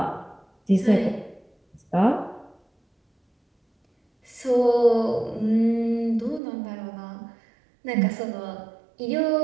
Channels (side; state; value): left; drops out; at 6.4 s